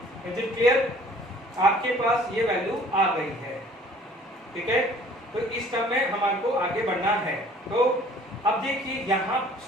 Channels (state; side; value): normal; both; correlation 0.53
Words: Is it clear? आपके पास ये वैल्यू आ गई है, ठीक है। तो इस टर्म में हमारे को आगे बढ़ना है, तो अब देखिए यहाँ